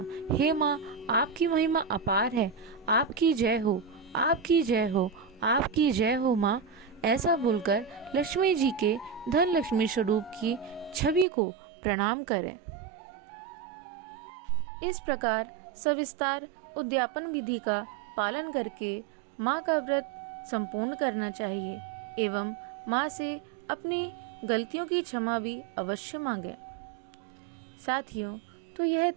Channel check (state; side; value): drops out; left; at 11.2 s